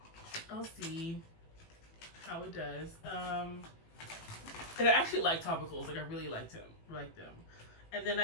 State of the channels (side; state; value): right; late; 18 ms